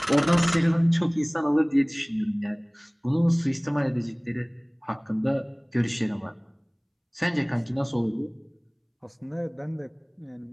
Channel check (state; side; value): identical; both; correlation 1.00